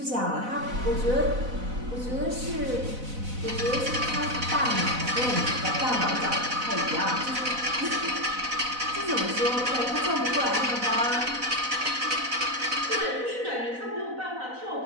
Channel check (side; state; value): left; late; 4.0 ms